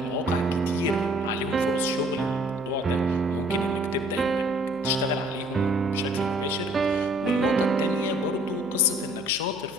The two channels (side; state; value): left; noise; hum, 26 dB below the sound